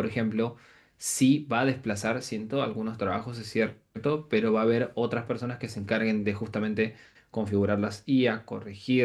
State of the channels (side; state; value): both; identical; correlation 1.00